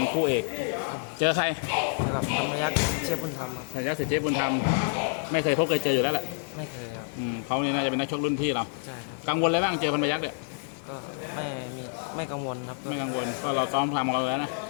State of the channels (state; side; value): silent; right; digital silence